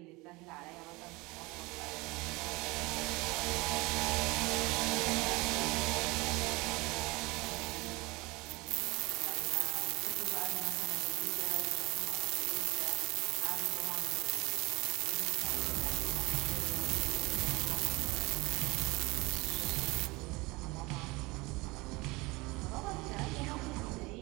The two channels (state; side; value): quieter; left; 23.6 dB